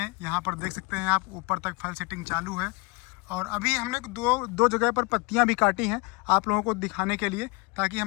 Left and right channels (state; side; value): quieter; right; 27.6 dB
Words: यहाँ पर देख सकते हैं आप, ऊपर तक फल सेटिंग चालू है। और अभी हमने दो जगह पर पत्तियां भी काटी हैं आप लोगों को दिखाने के लिए, ताकि